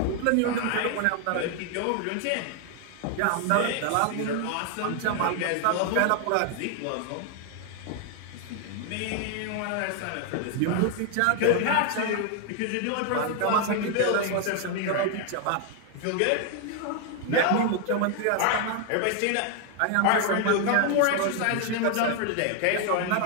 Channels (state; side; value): different; both; correlation 0.00